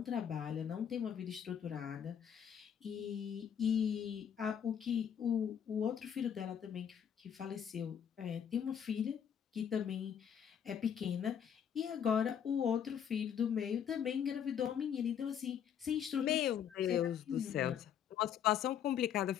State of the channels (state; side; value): quieter; right; 8.6 dB